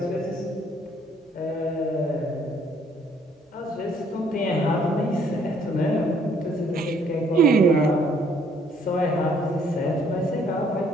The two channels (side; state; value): both; normal; correlation 0.64